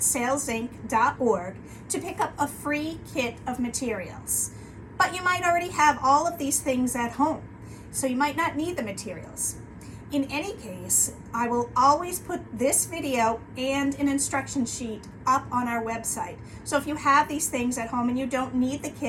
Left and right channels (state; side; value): identical; both; correlation 1.00